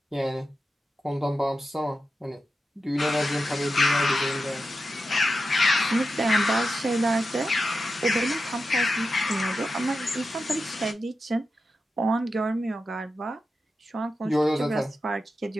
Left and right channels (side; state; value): both; normal; correlation 0.90